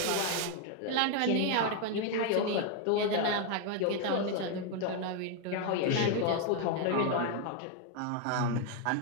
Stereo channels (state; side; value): different; both; correlation 0.01